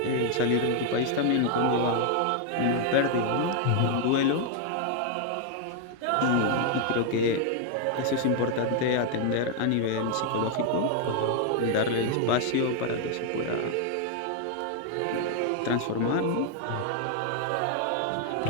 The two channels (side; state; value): both; different; correlation 0.00